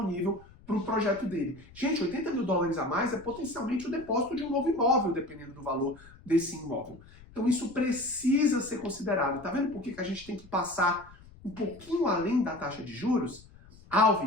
para o projeto dele. Gente, 80 mil dólares a mais é potencialmente o depósito de um novo imóvel, dependendo do valor desse imóvel. Então isso precisa ser considerado. Tá vendo por que a gente tem que passar um pouquinho além da taxa de juros?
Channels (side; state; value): left; noise; rumble, 22 dB below the sound